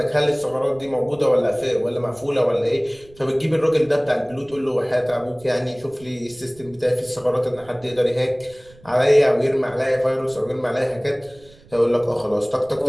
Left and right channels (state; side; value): noise; right; rumble, 25 dB below the sound